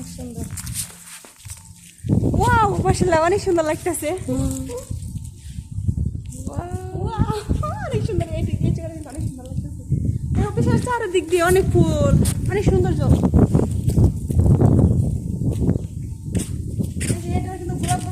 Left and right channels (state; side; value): identical; both; correlation 1.00